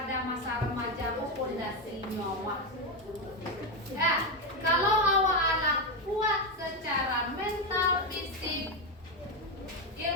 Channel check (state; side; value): normal; both; correlation 0.09